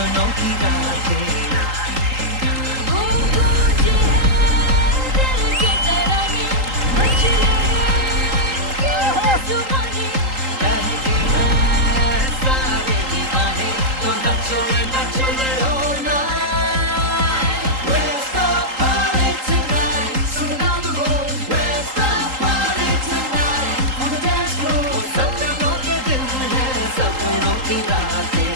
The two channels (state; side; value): late; left; 3.8 ms